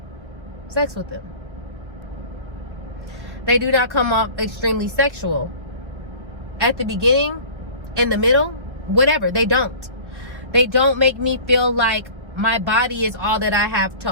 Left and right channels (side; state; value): left; late; 1.3 ms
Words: sex with them. They do not come off extremely sexual. At the beginning, in the middle, whatever, they don't. They don't make me feel like my body is all that I have to